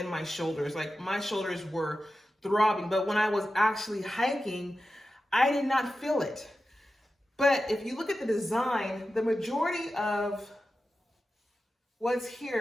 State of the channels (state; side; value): normal; both; correlation 0.93